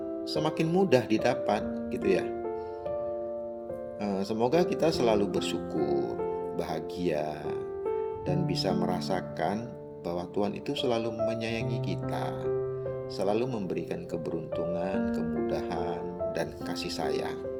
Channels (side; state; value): both; identical; correlation 1.00